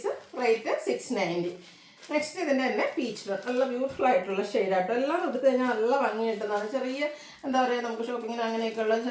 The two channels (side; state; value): both; identical; correlation 1.00